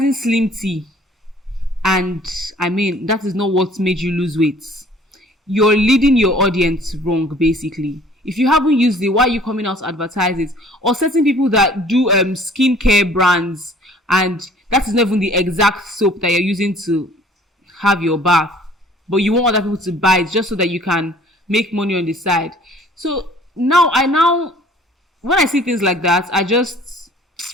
slim tea, and I mean, that is not what made you lose weight. You're leading your audience wrong, basically. If you haven't used it, why are you coming out to advertise it? Or certain people that do skincare brands, and that is not even the exact soap that you're using to have your bath, but you want other people to buy it just so that you can make money on the side. So now when I see things like that,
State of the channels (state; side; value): normal; both; correlation 0.53